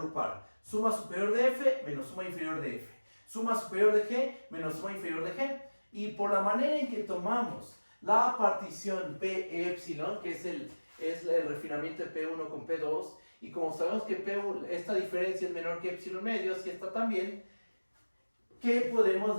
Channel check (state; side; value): inverted; both; correlation -1.00